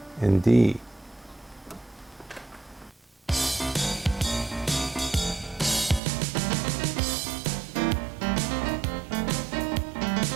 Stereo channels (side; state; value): left; drops out; at 6.0 s